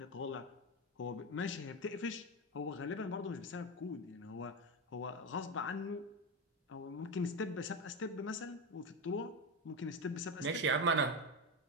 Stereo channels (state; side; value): normal; both; correlation 0.15